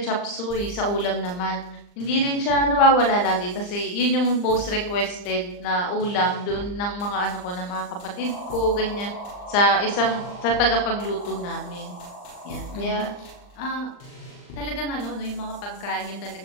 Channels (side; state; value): right; late; 39 ms